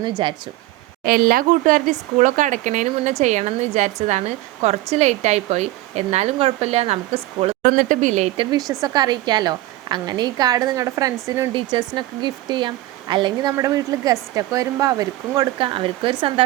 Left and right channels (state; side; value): quieter; left; 17.0 dB